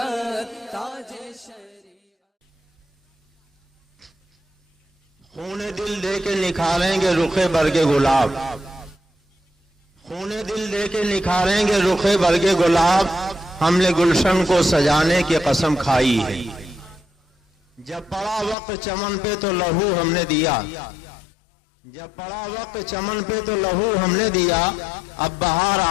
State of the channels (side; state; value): right; drops out; at 18.6 s